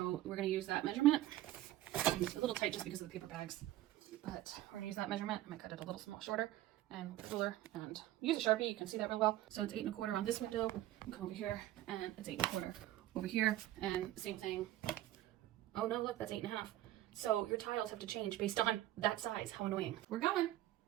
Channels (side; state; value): left; quieter; 14.6 dB